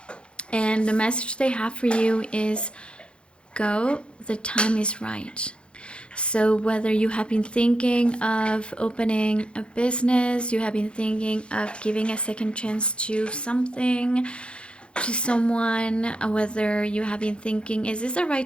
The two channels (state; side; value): late; right; 0.056 ms